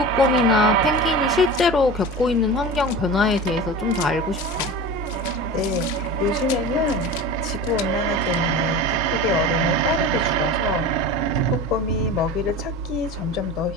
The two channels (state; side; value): normal; both; correlation 0.32